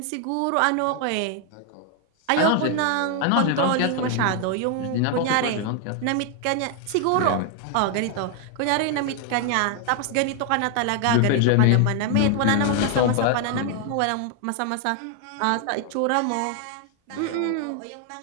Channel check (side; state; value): both; different; correlation 0.00